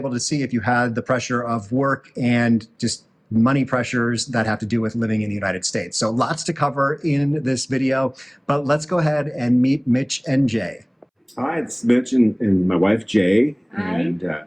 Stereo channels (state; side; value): identical; both; correlation 1.00